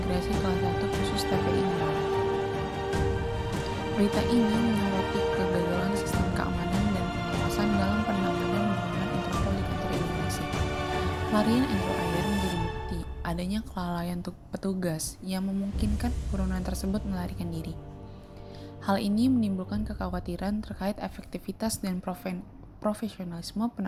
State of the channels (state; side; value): identical; both; correlation 1.00